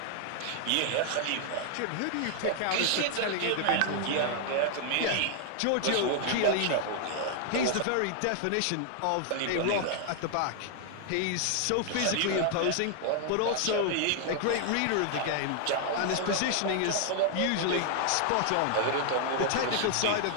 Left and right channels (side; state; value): both; different; correlation 0.00